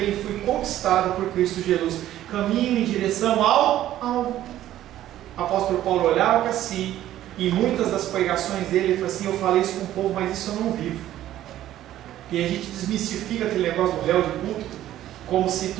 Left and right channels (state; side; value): quieter; left; 13.0 dB